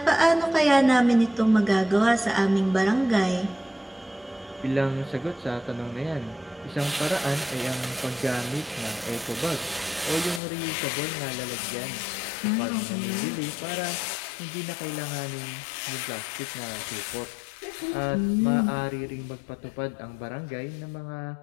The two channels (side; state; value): right; drops out; at 10.4 s